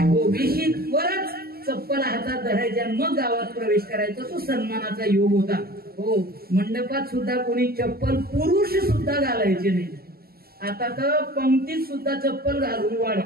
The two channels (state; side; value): late; left; 0.45 ms